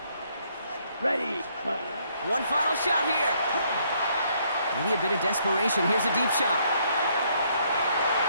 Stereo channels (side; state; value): both; inverted; correlation -0.69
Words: Ready. One final shot here. Maybe a bit of desperation. Here's a deep shot.